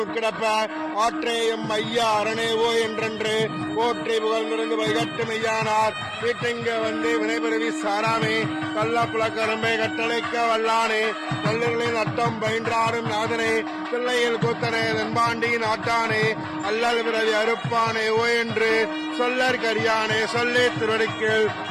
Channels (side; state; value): both; identical; correlation 1.00